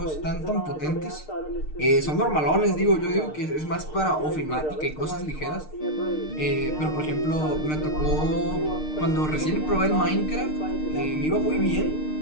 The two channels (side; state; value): right; late; 6.6 ms